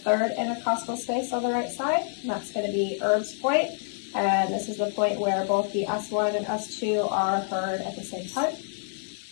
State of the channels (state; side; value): silent; right; digital silence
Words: intercostal space on the right side. And that's going to be Erb's point. And this is the point where both the S1 and S2 are heard at the same time.